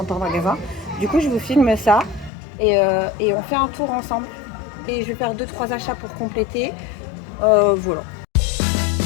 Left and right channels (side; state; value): right; drops out; at 2.3 s